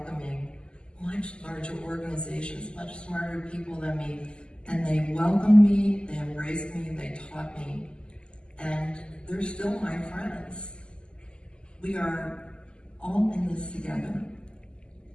much larger organizations, much smarter people than me, and they welcomed me, they embraced me, they taught me, and they're still my friends. We are all in this together.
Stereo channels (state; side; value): late; right; 0.050 ms